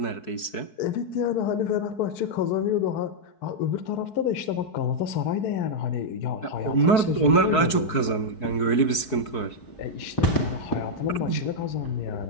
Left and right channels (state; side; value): late; right; 4.6 ms